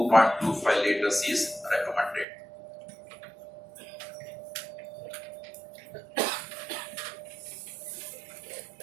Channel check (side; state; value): left; drops out; at 2.2 s